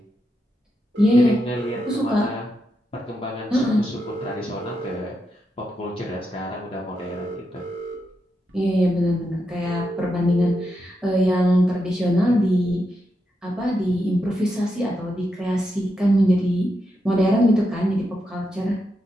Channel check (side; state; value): both; normal; correlation 0.84